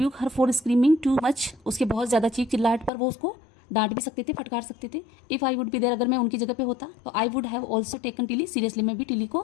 her for screaming too much, उसके बहुत ज़्यादा चीख चिल्लाहट पर वो उसको डांट भी सकते थे, फटकार सकते थे। If I would be there, अगर मैं उनकी जगह पे होता तो I would have also taken Tilly seriously, मैं भी टिली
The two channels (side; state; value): right; drops out; at 2.9 s